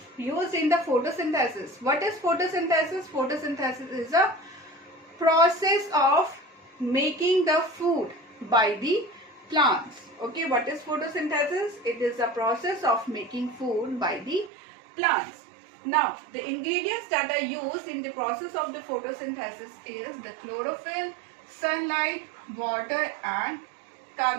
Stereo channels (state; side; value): drops out; left; at 14.5 s